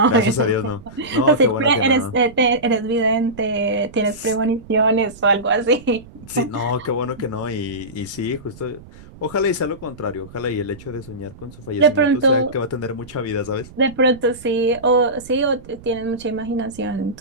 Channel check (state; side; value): noise; right; rumble, 20 dB below the sound